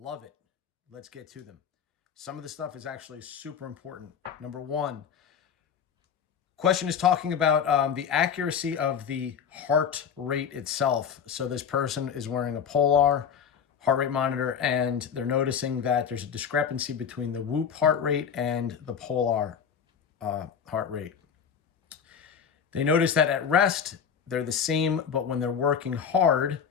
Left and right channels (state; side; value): quieter; right; 7.4 dB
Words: it. Let's get to them. Some of the stuff is actually super important. Number one, question is talking about the accuracy of the heart rate itself. So this person is wearing a Polar heart rate monitor, and they're noticing that there's a discrepancy between the Whoop heart rate and the Polar heart rate. They notice that at rest, they're the same, but when they're working hard,